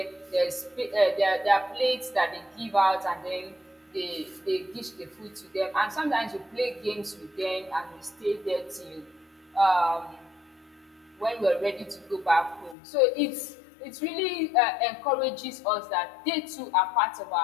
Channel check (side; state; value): right; drops out; at 12.8 s